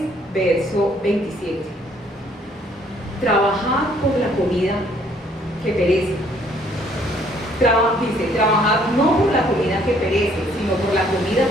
verso 27. Trabajad por la comida que perece. Dice, trabajad no por la comida que perece, sino por la comida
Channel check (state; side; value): normal; both; correlation 0.63